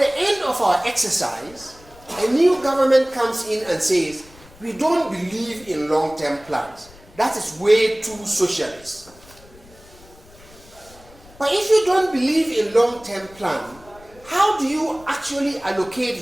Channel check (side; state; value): left; noise; rumble, 24 dB below the sound